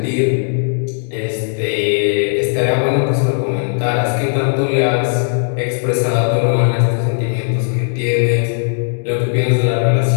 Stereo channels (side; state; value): right; silent; digital silence